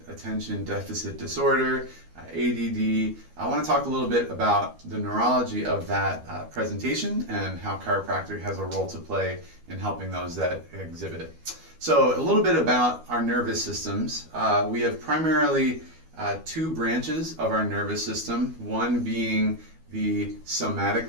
deficit disorder, ADD. I want to talk a little bit about the neurology of that presentation and how chiropractic has a role to play in helping those that exhibit it. So a little bit about our nervous systems. We have primarily two branches of our nervous system, one being the somatic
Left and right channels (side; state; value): left; late; 12 ms